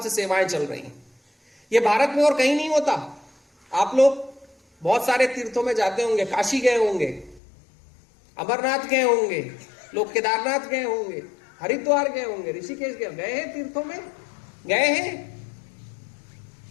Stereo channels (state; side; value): drops out; right; at 7.4 s